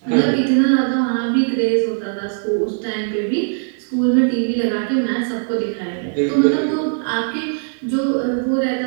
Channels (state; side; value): silent; left; digital silence